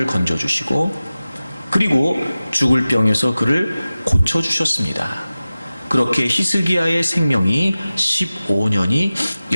건져주시고, 그리고 죽을 병에서 그를 고쳐주셨습니다. 그렇게 히스기야의 생명이 15년이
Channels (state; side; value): inverted; both; correlation -0.96